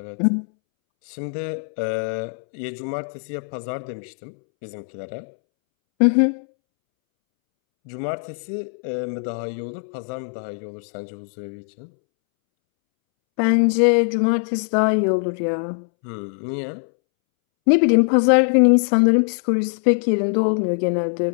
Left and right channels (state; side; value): silent; right; 65 dB below the other